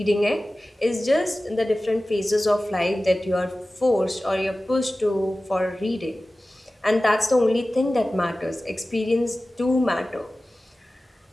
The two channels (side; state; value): both; normal; correlation 0.96